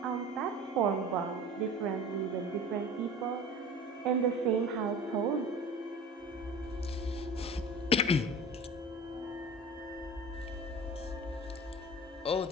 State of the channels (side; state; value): both; normal; correlation 0.37